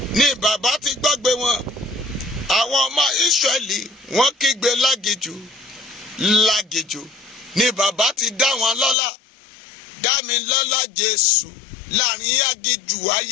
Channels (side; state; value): right; drops out; at 9.0 s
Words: ni bàbá ti gbọ́gbé wọn. Àwọn ọmọ Ísírẹ́lì wọ́n kígbe lágijù. Lágijù ni bàbá ti dá wọn lọ́lá. Dá mi lọ́lá Jésù láàrin agijù